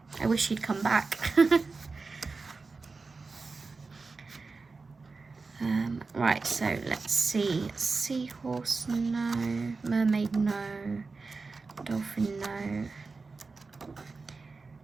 I wish he'd come back. Right, so let's see. Seahorse, no. Mermaid, no. Dolphin, no.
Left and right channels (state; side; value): quieter; left; 4.1 dB